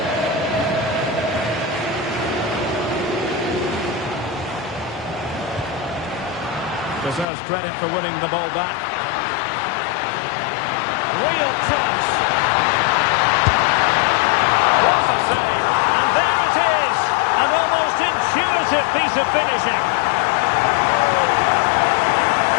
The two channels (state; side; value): drops out; right; at 7.2 s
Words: Deserves credit for winning the ball back. Real chance. What a save. And there it is. An almost intuitive piece of finishing.